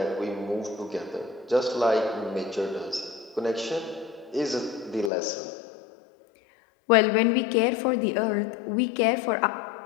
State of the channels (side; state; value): right; drops out; at 5.1 s